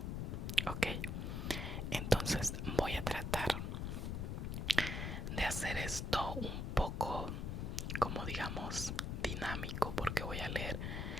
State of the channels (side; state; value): left; noise; rumble, 2 dB below the sound